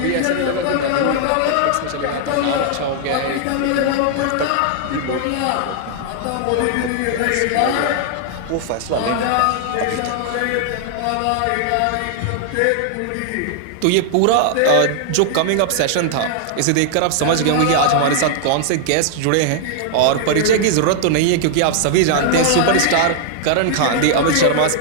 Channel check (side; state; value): both; different; correlation -0.01